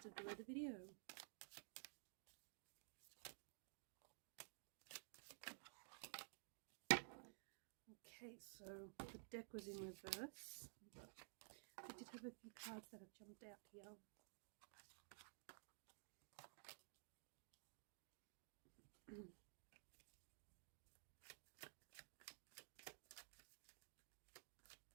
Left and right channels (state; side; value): silent; left; digital silence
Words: below the video. Okay, so the deck was in reverse, but I did have a few cards that have jumped out here.